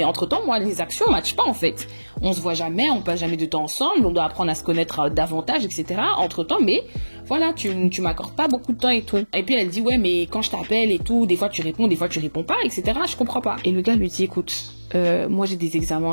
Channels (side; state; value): both; inverted; correlation -1.00